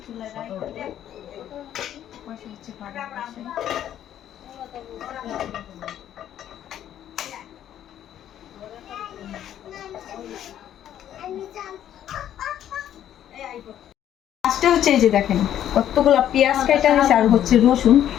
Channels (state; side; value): quieter; right; 11.0 dB